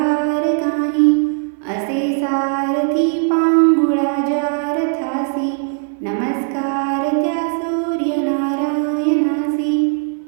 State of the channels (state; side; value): silent; left; 58 dB below the other